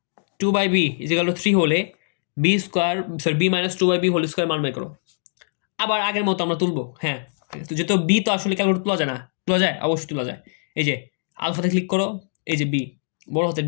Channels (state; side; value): silent; right; digital silence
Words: 2 by B is equal to 3 হলে B square sorry B minus 2 by B whole square মান বের করো। আবার আগের মতো আমরা তুলবো, হ্যাঁ, তো যেহেতু বি তো আসলে ক্যালকুলেট তোলা যায় না, তোলা যায় অবশ্যই তোলা যায়। এই যে আলফাতে ক্লিক করো, এই যে বি বড় হাতের